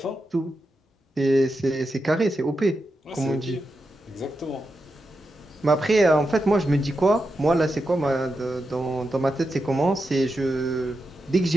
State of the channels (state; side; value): normal; both; correlation 0.88